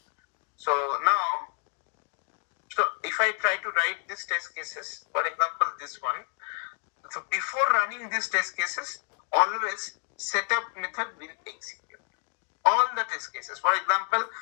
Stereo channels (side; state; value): right; quieter; 37.5 dB